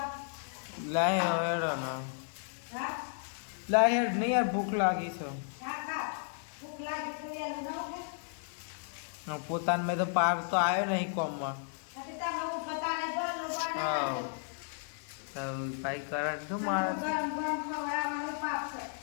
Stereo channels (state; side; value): silent; right; digital silence